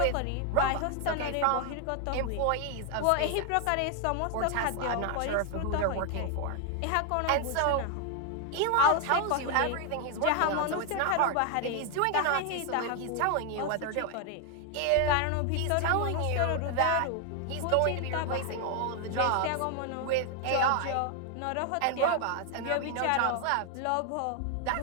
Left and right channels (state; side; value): different; both; correlation 0.00